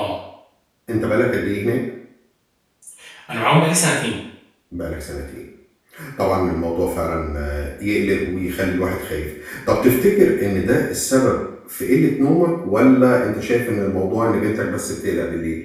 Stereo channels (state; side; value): identical; both; correlation 1.00